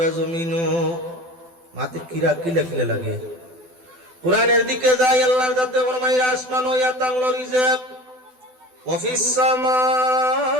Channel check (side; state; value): left; late; 12 ms